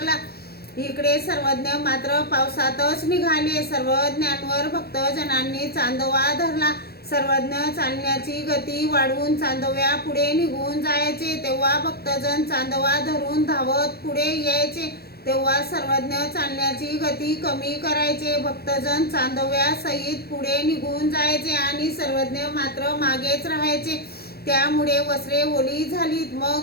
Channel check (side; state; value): right; late; 0.46 ms